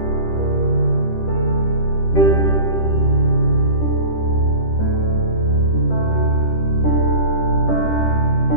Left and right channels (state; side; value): late; right; 10 ms